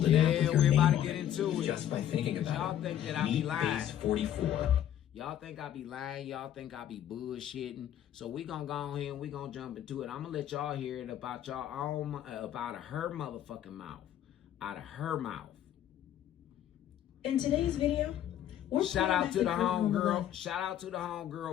an app with your we're name about to on get it into it. just by thinking about Y'all it. think that I be lying. Base 44. Y'all think I be lying. Y'all think I be bullshitting. So we gonna go on here and we gonna jump into it. I'm gonna let y'all hear it about y'all own, about her motherfucking mouth. Out of her mouth. In today's video, shout out to the homegirl. Shout out to the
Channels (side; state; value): right; quieter; 11.0 dB